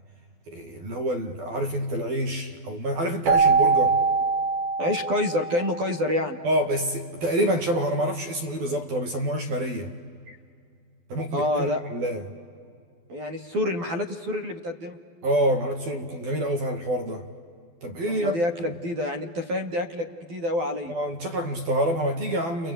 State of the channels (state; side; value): late; left; 12 ms